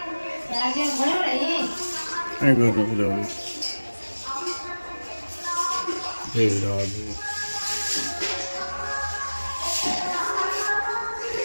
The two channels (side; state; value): both; inverted; correlation -1.00